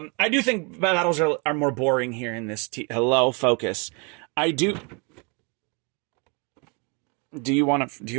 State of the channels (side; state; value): left; quieter; 32.9 dB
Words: do think battles are more boring here in this. Hello, focus. I do. Do you want